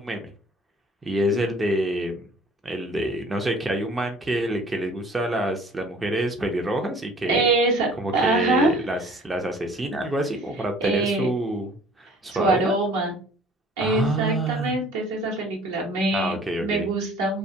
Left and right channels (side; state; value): both; normal; correlation 0.51